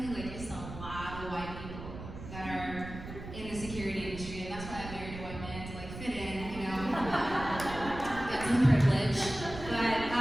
Like there's a lot of white people that are in the security industry, and that's why I married a white man to like fit in, you know, get some privilege. But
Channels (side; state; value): right; noise; rumble, 11 dB below the sound